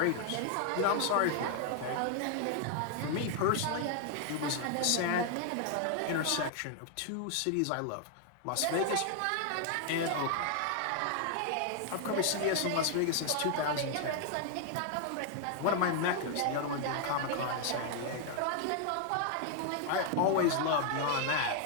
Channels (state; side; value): different; both; correlation 0.00